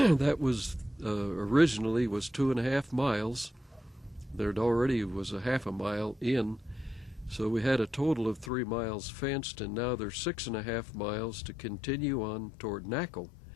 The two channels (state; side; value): drops out; right; at 8.5 s